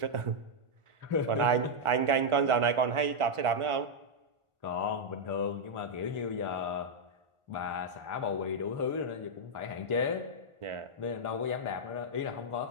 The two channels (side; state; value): left; late; 1.4 ms